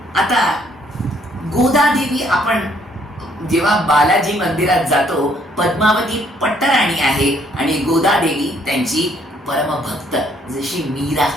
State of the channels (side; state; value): both; normal; correlation 0.66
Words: आता गोदादेवी, आपण जेव्हा बालाजी मंदिरात जातो, पद्मावती पट्टराणी आहे आणि गोदादेवी त्यांची परमभक्त, जशी मीरा